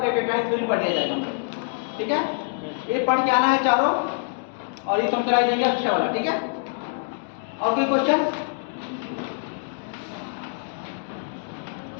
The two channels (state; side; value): silent; right; digital silence